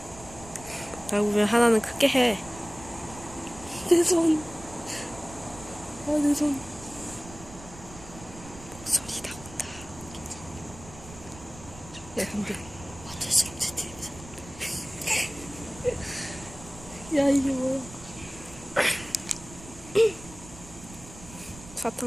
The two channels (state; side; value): noise; right; rumble, 16 dB below the sound